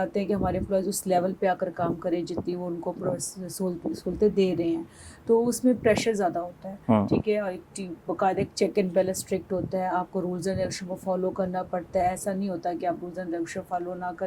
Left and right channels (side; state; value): both; identical; correlation 1.00